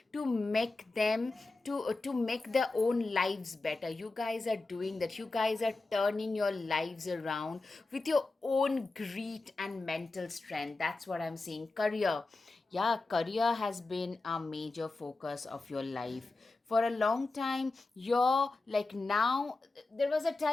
to make them to make their own lives better. You guys are doing that. You guys are turning your lives around with your own grit and mental strength. That's what I'm seeing. Career, Yeah, career has been a major focus of your life. For a long time, you're like now, there was a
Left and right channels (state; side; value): quieter; right; 3.4 dB